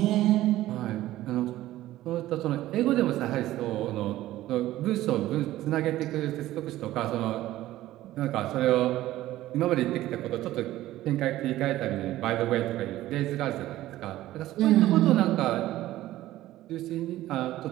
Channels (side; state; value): left; quieter; 15.1 dB